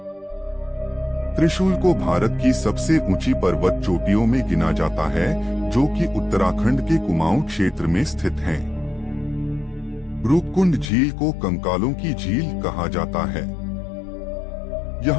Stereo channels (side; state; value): right; drops out; at 10.9 s